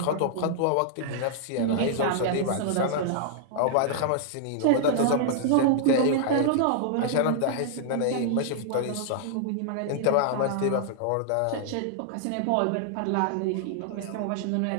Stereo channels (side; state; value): both; different; correlation -0.01